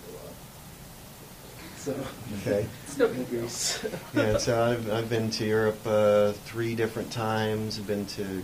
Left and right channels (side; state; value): both; identical; correlation 1.00